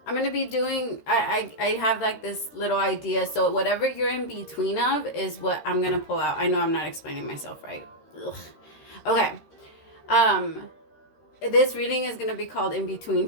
going to be doing, I have like this little idea. So whatever you're in between of is what I'm going to pull out. I know I'm not explaining myself right. Ugh. Okay. This reading is going to be called In Between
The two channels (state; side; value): late; right; 13 ms